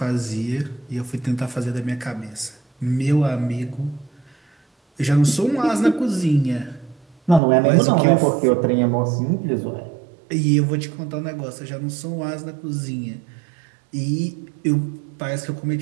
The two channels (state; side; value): drops out; left; at 7.4 s